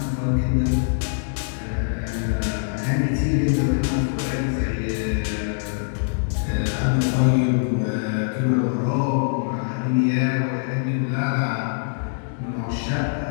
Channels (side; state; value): right; silent; digital silence